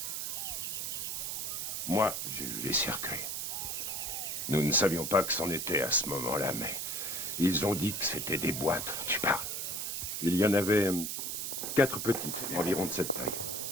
Moi, j'ai vu les cercueils. Nous ne savions pas que c'en était à ce moment-là, mais ils ont dit que c'était des boîtes. Tu parles. Il y en avait 4 petites, environ de cette taille,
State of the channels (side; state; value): right; noise; hiss, 3 dB below the sound